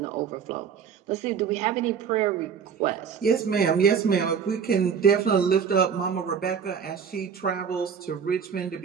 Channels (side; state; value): left; quieter; 7.0 dB